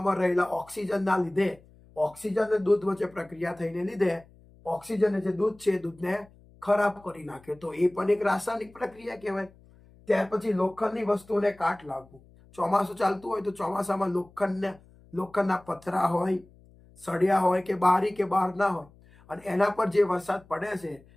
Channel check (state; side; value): noise; left; hum, 26 dB below the sound